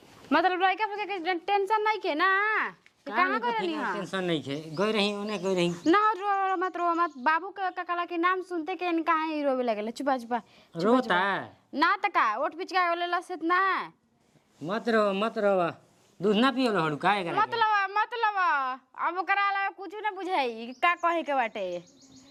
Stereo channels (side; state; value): both; identical; correlation 1.00